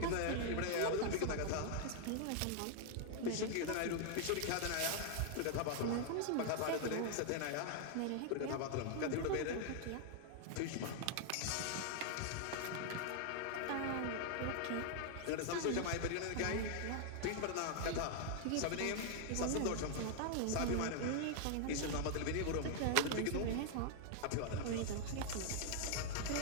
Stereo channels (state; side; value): different; both; correlation 0.00